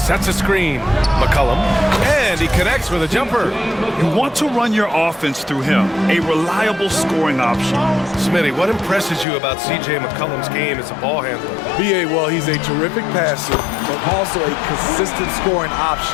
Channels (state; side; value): drops out; right; at 9.2 s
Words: a screen. McCollum, and he connects with a jumper. You want to run your offense through him, a reliable scoring option. Smitty, what impresses you about C.J. McCollum's game as a ball handler? BA, well, he's a terrific passer, but also a consistent scoring